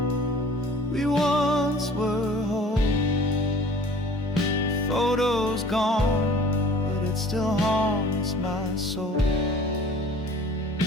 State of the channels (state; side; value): normal; both; correlation 0.48